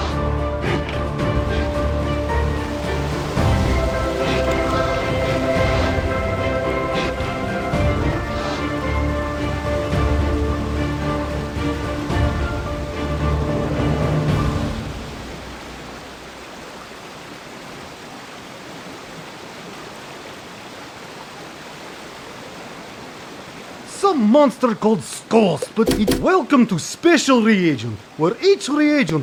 Some monster called Skulls, but it's welcome to Special Reagent, where each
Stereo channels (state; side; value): identical; both; correlation 1.00